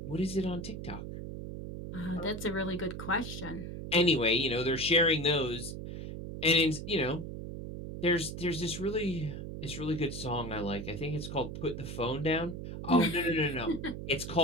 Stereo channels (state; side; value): noise; right; hum, 7 dB below the sound